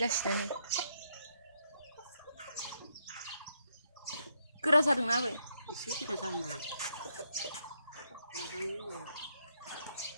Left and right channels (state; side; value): inverted; both; correlation -0.76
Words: नै गोरा जादोंना आबै एसे गोरा जाहांबाय